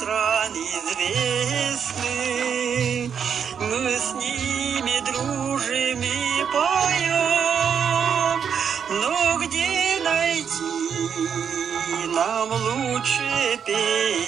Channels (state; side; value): quieter; left; 7.4 dB